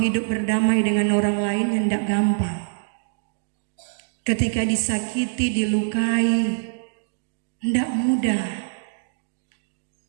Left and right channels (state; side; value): silent; left; digital silence